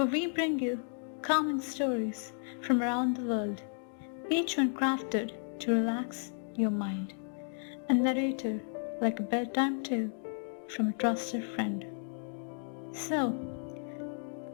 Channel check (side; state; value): right; silent; 56 dB below the other